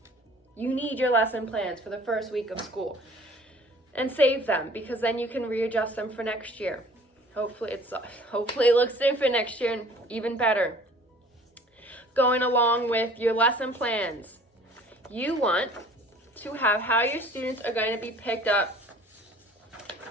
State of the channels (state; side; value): normal; both; correlation 0.50